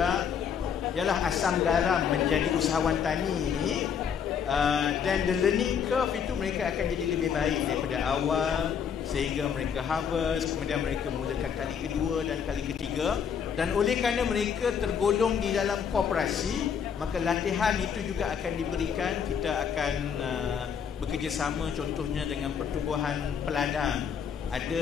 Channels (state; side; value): quieter; right; 7.3 dB